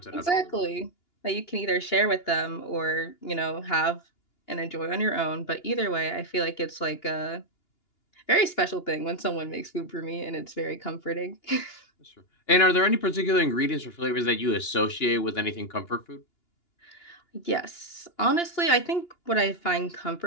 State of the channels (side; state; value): right; late; 2.9 ms